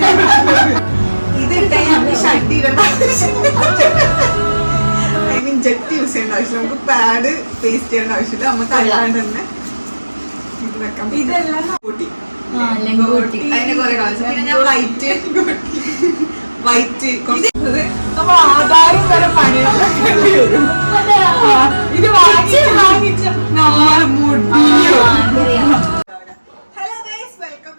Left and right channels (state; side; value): inverted; both; correlation -1.00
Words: ഇതിട്ടേ നമുക്ക് ഷഡ് ഇടേണ്ട ഐ മീൻ ജെറ്റ് യൂസ് ചെയ്യേണ്ട ആവശ്യം, നമുക്ക് പാഡ് പേസ്റ്റ് ചെയ്യേണ്ട ആവശ്യമില്ല, നമുക്ക് അല്ലാണ്ട് തന്നെ ഇത് വെക്കാം. ഇതെല്ലാം അതിന്റെ കുറെ കാണിച്ചു. പിന്നെ ഞാൻ വൈറ്റ് നമ്മൾ ആധാരം വരെ പണിയാൻ വരും. ഇത് വാങ്ങിച്ച hello guys, welcome